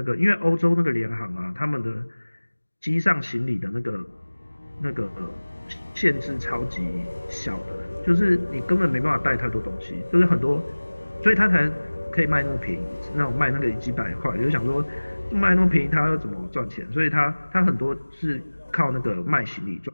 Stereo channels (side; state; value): both; inverted; correlation -1.00